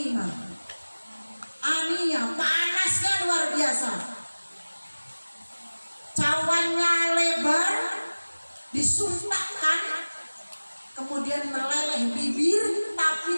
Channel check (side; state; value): both; inverted; correlation -1.00